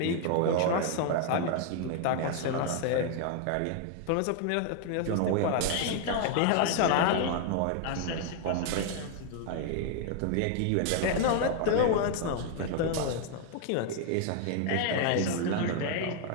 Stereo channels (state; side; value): different; both; correlation 0.00